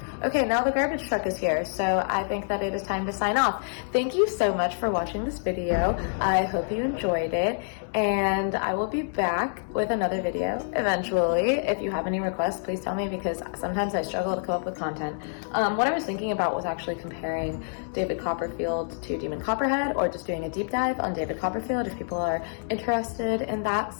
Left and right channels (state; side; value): silent; right; 60 dB below the other